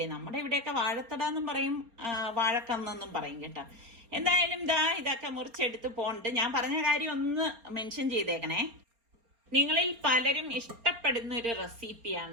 നമ്മുടെ ഇവിടെയൊക്കെ വാഴത്തട എന്നും പറയും, വാഴക്കന്നെന്നും പറയും കേട്ടോ. എന്തായാലും ഇതൊക്കെ മുറിച്ചെടുത്ത് പോണ്ട്. ഞാൻ പറഞ്ഞ കാര്യം ഒന്ന് മെൻഷൻ ചെയ്തേക്കണേ. നിങ്ങളിൽ പലരും ഇഷ്ടപ്പെടുന്ന ഒരു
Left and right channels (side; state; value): left; late; 4.3 ms